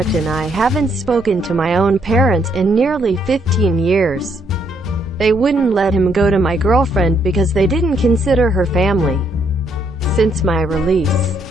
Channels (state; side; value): normal; both; correlation 0.72